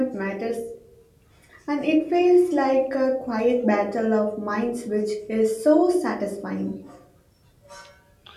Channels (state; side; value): identical; both; correlation 1.00